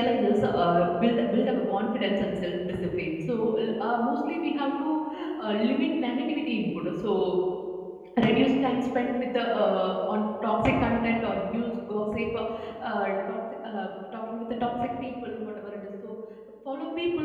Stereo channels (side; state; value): both; identical; correlation 1.00